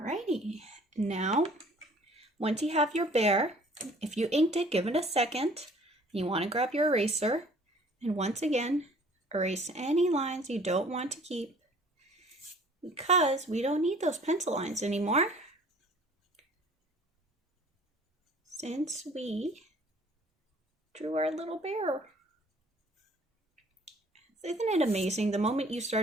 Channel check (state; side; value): normal; both; correlation 0.53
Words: Now, once you have your bear, if you inked it, give it a second. You want to grab your eraser. And once again, erase any lines you don't want to keep because we don't need those pencil lines anymore. Since we drew our little bear. Isn't it amazing the moment you